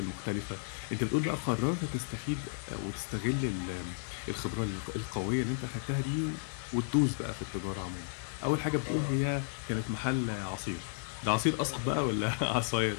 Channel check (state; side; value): silent; right; digital silence